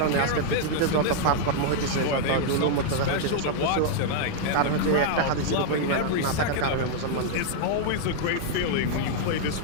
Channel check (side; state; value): both; different; correlation -0.01